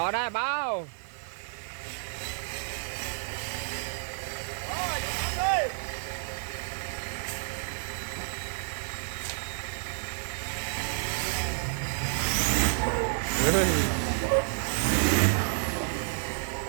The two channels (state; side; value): silent; left; 55 dB below the other